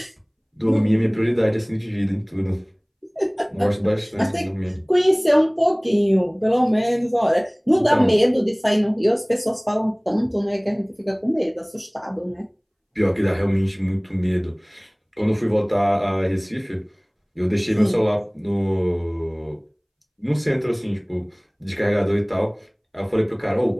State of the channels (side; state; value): both; identical; correlation 1.00